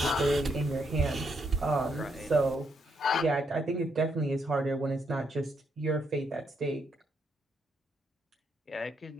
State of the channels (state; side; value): normal; both; correlation 0.76